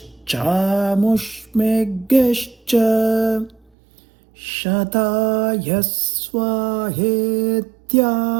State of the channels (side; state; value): left; drops out; at 3.6 s